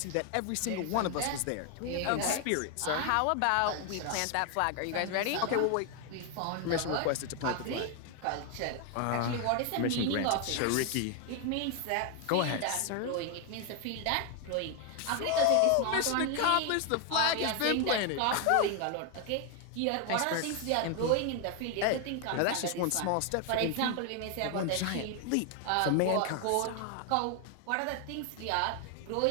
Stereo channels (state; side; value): different; both; correlation 0.01